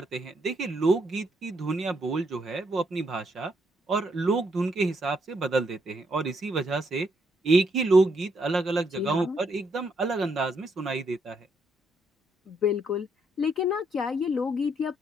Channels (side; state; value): both; normal; correlation 0.75